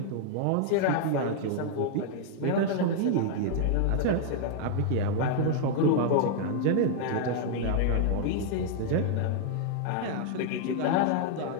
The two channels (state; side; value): different; both; correlation 0.00